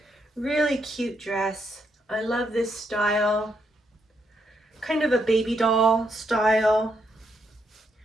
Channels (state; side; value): normal; both; correlation 0.78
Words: Really cute dress. I love this style. Kind of a baby doll style